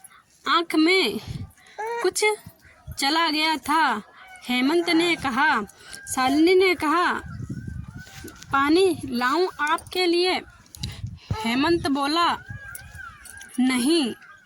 आँख में कुछ चला गया था। हेमंत ने कहा। शालिनी ने कहा, पानी लाऊं आपके लिए? हेमंत बोला, नहीं।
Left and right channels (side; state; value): both; identical; correlation 1.00